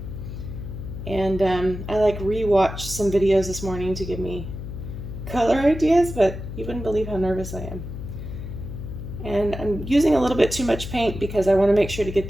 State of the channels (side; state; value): left; noise; hum, 9 dB below the sound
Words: And I rewatched some videos this morning to give me color ideas, but you wouldn't believe how nervous I am. And I'm using a little bit too much paint because I want to make sure to get